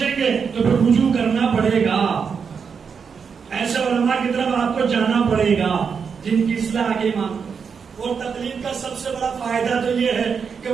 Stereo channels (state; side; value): quieter; left; 6.2 dB